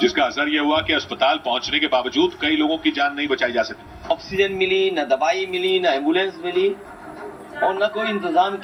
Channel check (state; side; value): identical; both; correlation 1.00